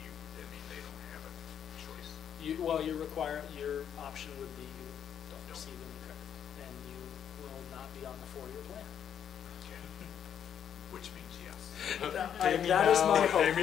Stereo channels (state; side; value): quieter; right; 8.8 dB